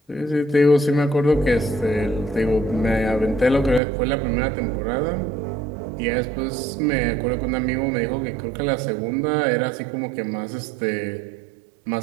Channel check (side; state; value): left; drops out; at 3.8 s